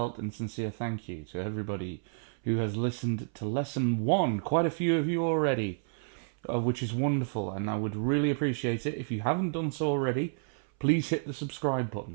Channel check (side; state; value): left; silent; 57 dB below the other